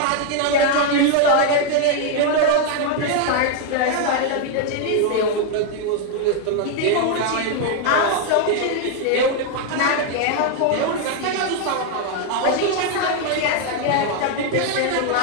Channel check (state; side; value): different; both; correlation 0.00